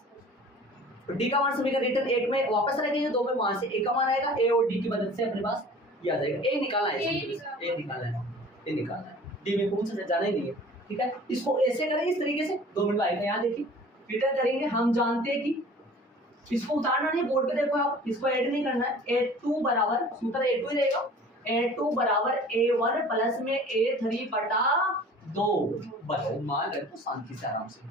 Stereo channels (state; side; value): normal; both; correlation 0.46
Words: तो D का मान समीकरण रिटर्न 1 में वापस रखेंगे, 2 में वहां से A का मान आएगा, A और D की मदद से अपने पास ये आ जाएगा। A निकालना है, A निकालना है, D में पूछ जाना ही नहीं है, ठीक है। इसको ऐसे करेंगे, इस तरीके से 2 मिनट आएगा, यहाँ देखिए रिटर्न करेंगे। हम जानते हैं कि इसको उतारना नहीं, बोर्ड पे देखो आप, इसको ऐड नहीं करना है। A2 बराबर, सूत्र A2 ही रहेगा, A2 बराबर A1 प्लस में A3 बटा 2। बताओ, मान रखो शांति से, आराम से,